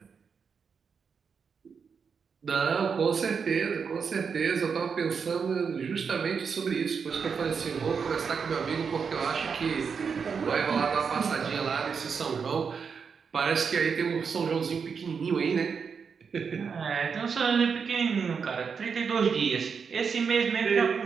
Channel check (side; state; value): left; quieter; 6.0 dB